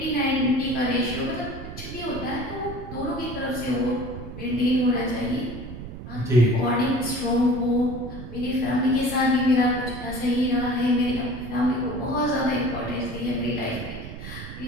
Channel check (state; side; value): noise; right; rumble, 10 dB below the sound